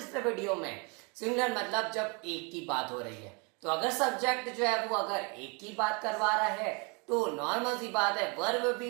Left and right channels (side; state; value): left; quieter; 32.5 dB